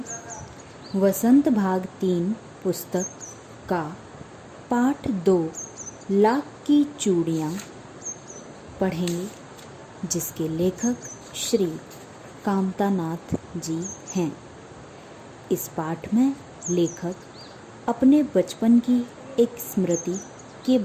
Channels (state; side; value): identical; both; correlation 1.00